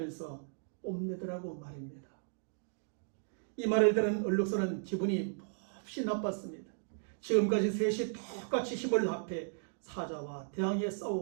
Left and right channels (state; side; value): silent; left; digital silence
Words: 뽐내더라고 말입니다. 이 말을 들은 얼룩소는 기분이 몹시 나빴습니다. 지금까지 셋이 똑같이 힘을 합해 사자와 대항해